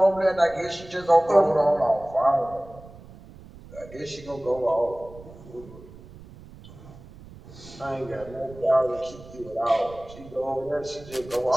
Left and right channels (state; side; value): noise; right; rumble, 19 dB below the sound